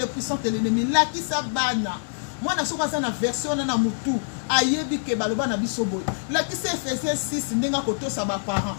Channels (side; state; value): right; silent; digital silence